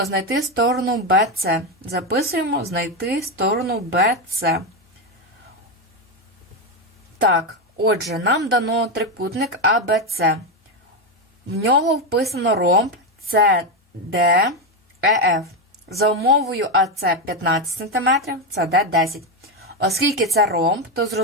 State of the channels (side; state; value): both; normal; correlation 0.09